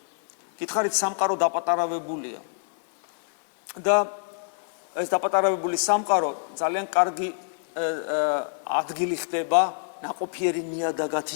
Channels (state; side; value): silent; right; digital silence